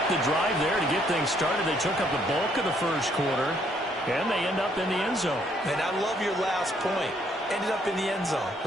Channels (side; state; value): both; normal; correlation 0.68